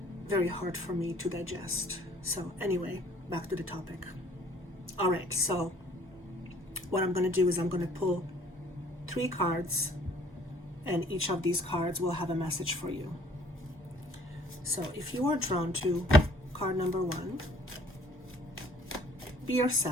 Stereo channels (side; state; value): both; normal; correlation 0.57